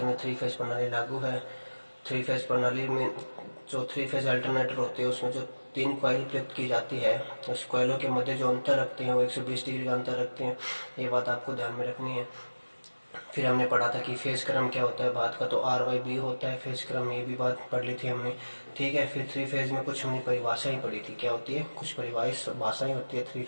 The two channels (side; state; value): both; inverted; correlation -1.00